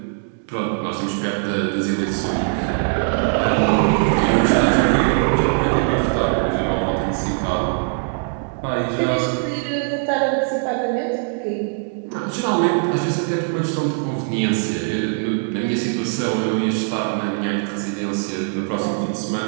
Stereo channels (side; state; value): left; silent; 60 dB below the other